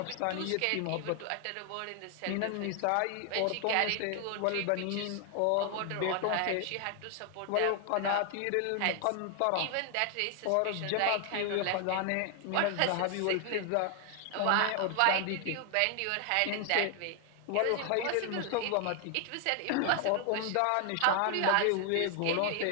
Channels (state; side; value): different; both; correlation 0.00